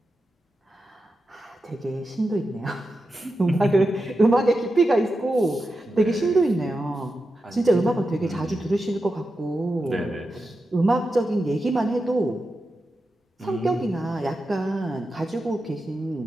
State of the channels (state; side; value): normal; both; correlation 0.90